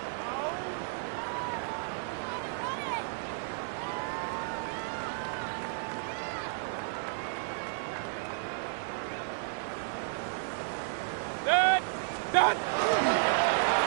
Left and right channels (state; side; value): silent; left; digital silence